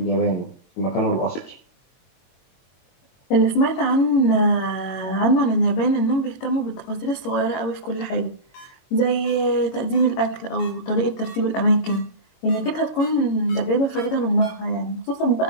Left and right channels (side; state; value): right; late; 22 ms